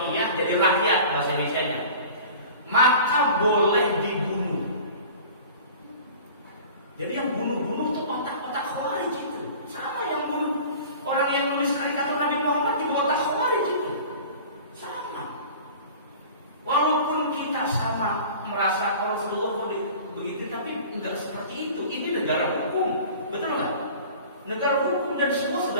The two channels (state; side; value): inverted; both; correlation -0.41